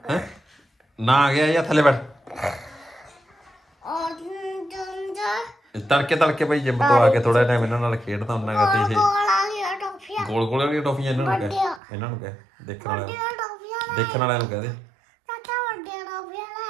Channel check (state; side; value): drops out; left; at 11.8 s